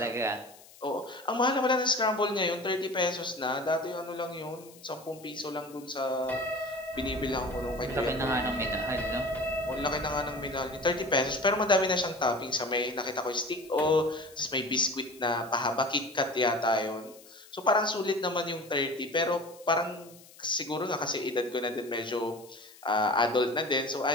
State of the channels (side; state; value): left; noise; hiss, 22 dB below the sound